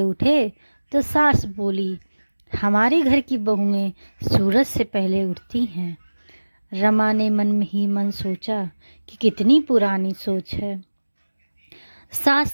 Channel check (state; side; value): inverted; both; correlation -1.00